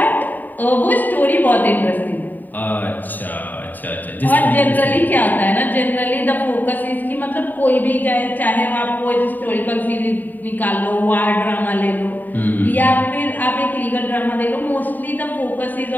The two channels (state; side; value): late; right; 0.087 ms